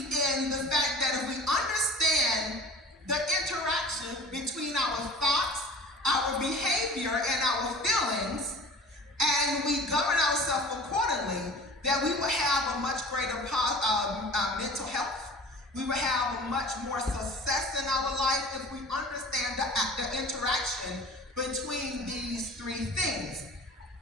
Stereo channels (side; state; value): both; normal; correlation 0.42